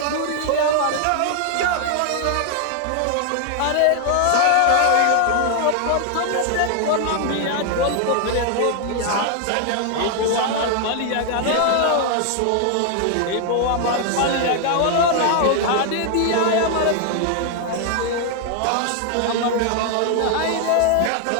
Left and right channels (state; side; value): different; both; correlation 0.00